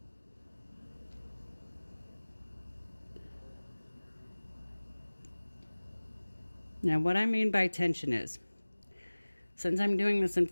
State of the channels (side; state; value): both; inverted; correlation -1.00